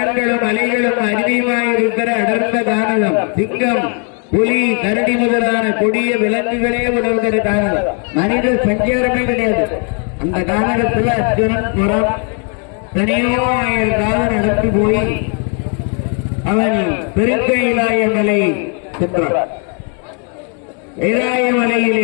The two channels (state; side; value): quieter; right; 39.6 dB